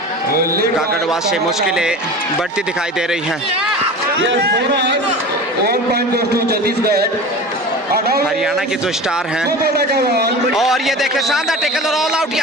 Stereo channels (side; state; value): both; normal; correlation 0.34